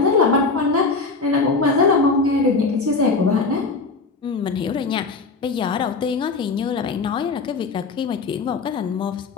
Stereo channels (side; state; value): right; quieter; 4.1 dB